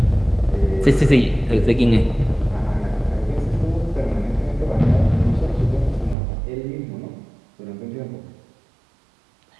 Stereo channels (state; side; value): drops out; left; at 6.2 s